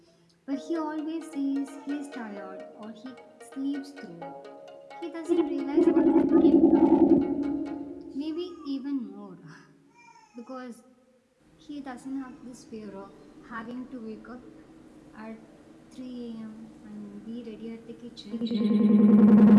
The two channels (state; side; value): identical; both; correlation 1.00